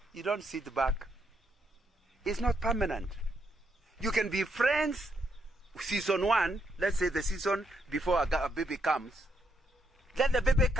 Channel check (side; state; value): both; normal; correlation 0.77